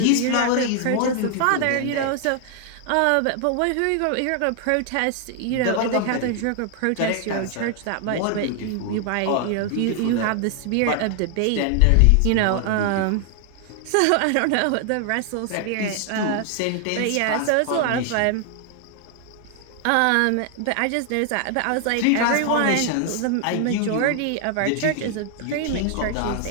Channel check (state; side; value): different; both; correlation 0.00